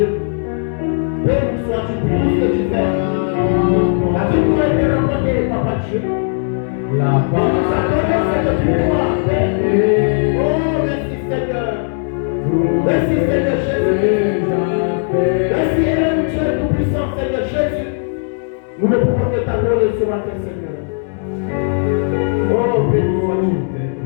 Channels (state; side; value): silent; right; digital silence